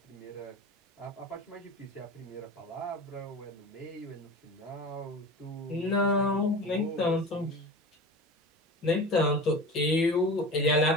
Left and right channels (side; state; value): both; normal; correlation 0.33